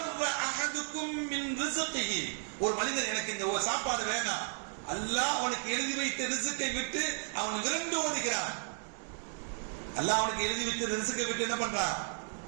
அஹதுக்கும் மின் ரிஸ்கிஹி, ஒரு மனிதன் எனக்கு இந்த சாப்பாடு வேணாம், அல்லாஹ் அவனுக்கு எழுதி வைத்த ரிஸ்கை விட்டு அவன் விரண்டு ஓடுகிறான். அல்லாஹ் அவனுக்கு எழுதி வைத்த ரிஸ்கை விட்டு என்ன பண்றான்?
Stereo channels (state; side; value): silent; left; 55 dB below the other